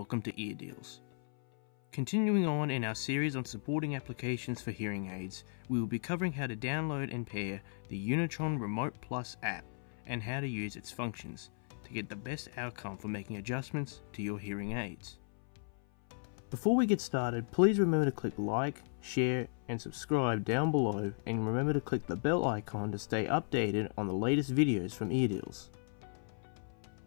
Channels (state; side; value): silent; right; 54 dB below the other